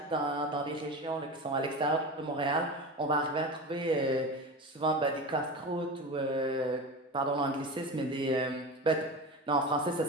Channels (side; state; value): both; normal; correlation 0.27